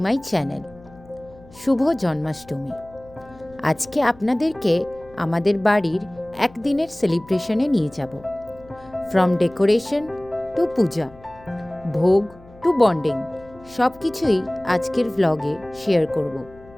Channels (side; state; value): left; noise; hum, 23 dB below the sound